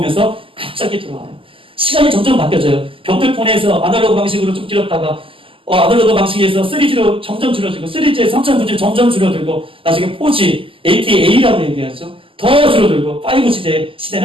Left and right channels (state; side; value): late; left; 0.25 ms